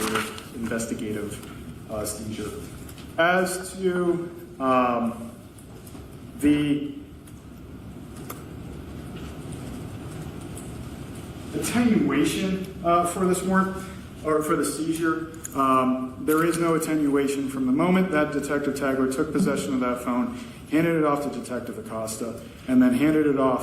seizure. As to the attenuation for this warrant, or for the seizure, there is no attenuation from the moment that Detective Tagler took possession of that phone, handed it off to Detective Acosta, and then handed it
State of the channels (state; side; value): identical; both; correlation 1.00